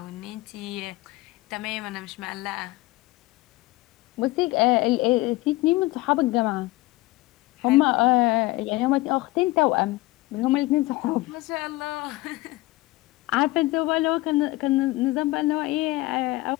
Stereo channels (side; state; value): right; quieter; 19.9 dB